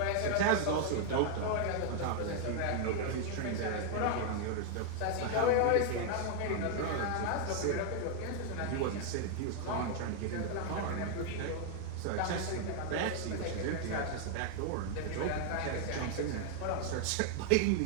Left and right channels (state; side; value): different; both; correlation 0.00